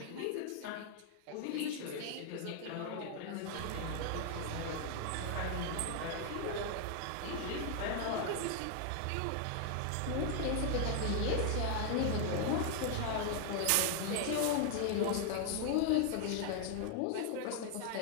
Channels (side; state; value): both; different; correlation 0.00